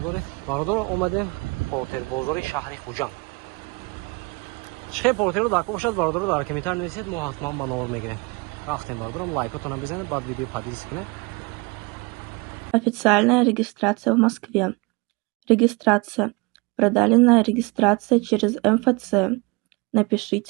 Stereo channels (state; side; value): quieter; left; 27.2 dB